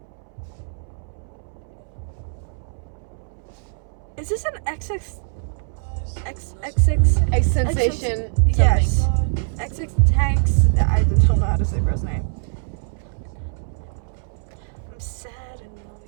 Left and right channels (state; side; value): silent; left; 64 dB below the other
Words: Is this an XX? A sensation. Yes. Something. XX tanks. I don't know how to say bro's name. I'm sad and